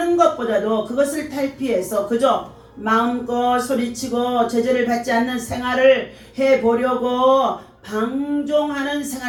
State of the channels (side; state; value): both; identical; correlation 1.00